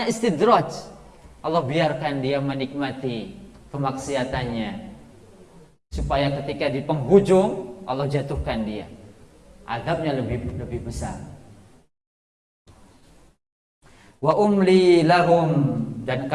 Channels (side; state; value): both; identical; correlation 1.00